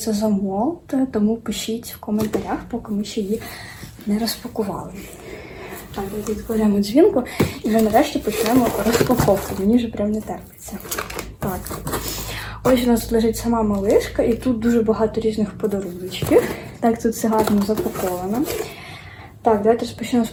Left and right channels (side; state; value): both; identical; correlation 1.00